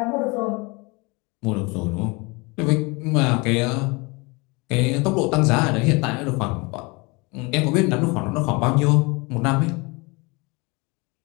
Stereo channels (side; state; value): right; quieter; 27.2 dB